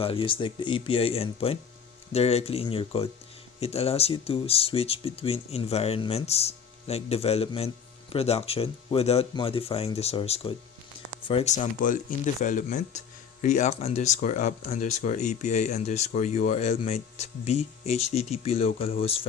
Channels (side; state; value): right; quieter; 6.9 dB